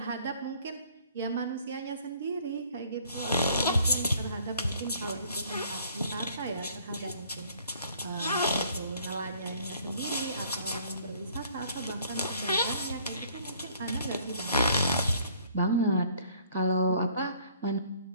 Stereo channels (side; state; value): both; inverted; correlation -0.59